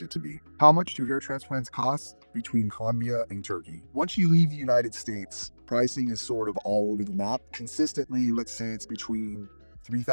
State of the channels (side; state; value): both; inverted; correlation -1.00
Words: it to be. How much do hair transplants cost between Colombia and Turkey? Once you leave the United States, pricing is sort of all over the map. Consistently, let's say it's between